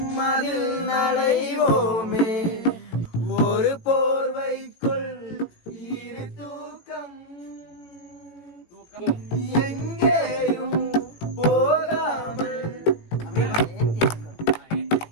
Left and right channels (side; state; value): right; late; 18 ms